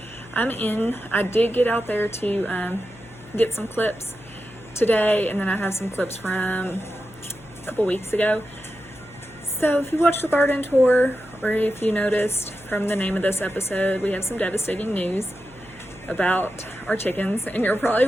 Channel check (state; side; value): noise; left; hum, 23 dB below the sound